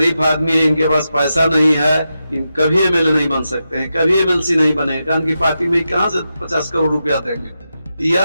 आदमी है, इनके पास पैसा नहीं है, इन कभी MLA नहीं बन सकते हैं, कभी MLC नहीं बने, कारण की पार्टी में कहां से 50 करोड़ रुपया देंगे।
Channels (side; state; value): both; inverted; correlation -0.88